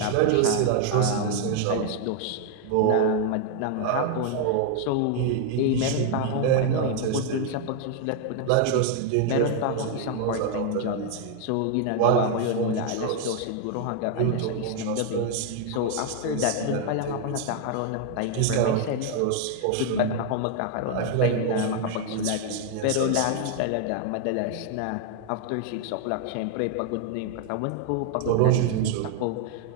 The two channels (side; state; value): both; different; correlation 0.00